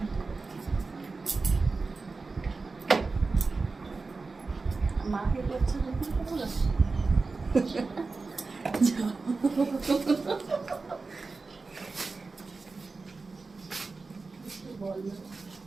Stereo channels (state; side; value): quieter; left; 4.0 dB